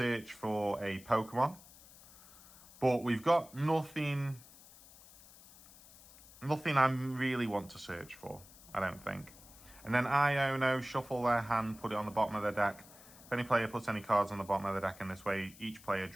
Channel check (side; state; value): left; noise; hiss, 21 dB below the sound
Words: for a Pokemon, but we've got nothing I really want to search for, I don't think. And then Iono, shuffle their hand, put it on the bottom of their deck. If any player puts any cards on the bottom of the deck in this way, each player